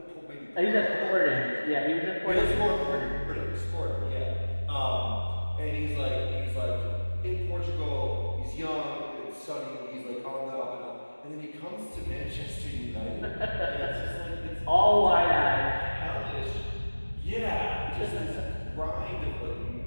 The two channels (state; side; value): inverted; both; correlation -1.00